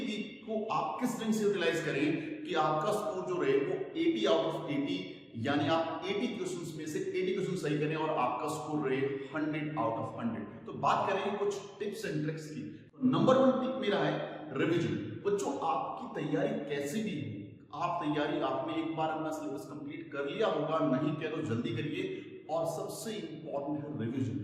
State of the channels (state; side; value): identical; both; correlation 1.00